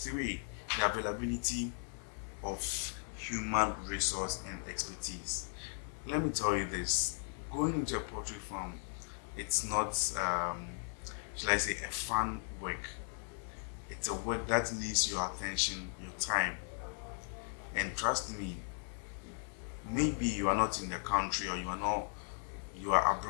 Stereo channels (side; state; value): right; silent; 53 dB below the other